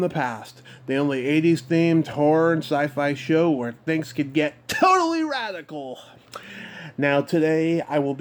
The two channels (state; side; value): identical; both; correlation 1.00